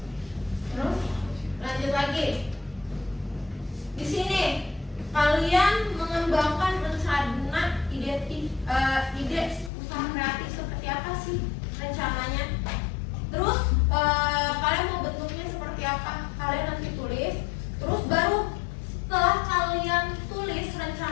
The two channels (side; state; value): right; drops out; at 9.7 s